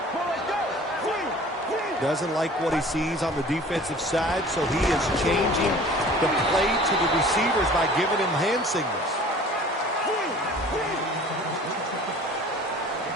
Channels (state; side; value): normal; both; correlation 0.46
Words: Doesn't like what he sees on the defensive side, so he is changing the play to the receivers by giving him hand signals.